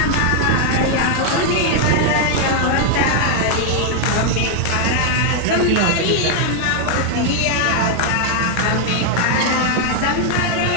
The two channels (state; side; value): different; both; correlation 0.00